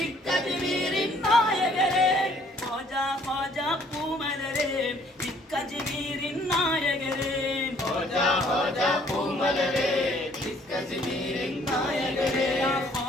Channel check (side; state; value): both; normal; correlation 0.61